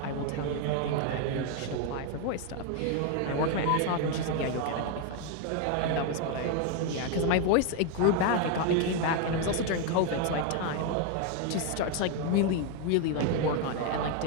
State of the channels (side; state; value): both; different; correlation 0.01